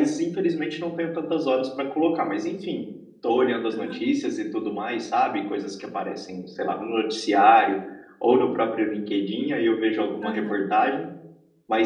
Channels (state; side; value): identical; both; correlation 1.00